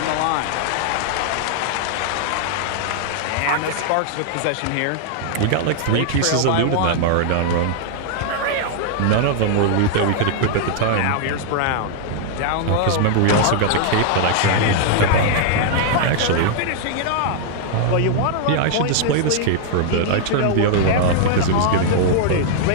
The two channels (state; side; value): different; both; correlation -0.01